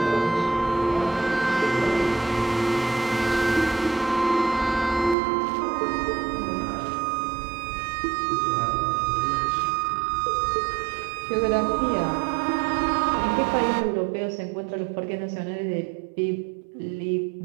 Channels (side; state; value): left; drops out; at 5.2 s